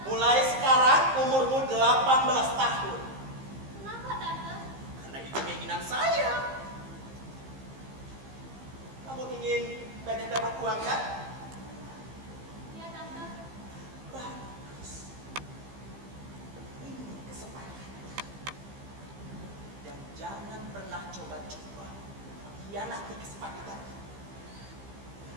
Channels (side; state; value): left; late; 15 ms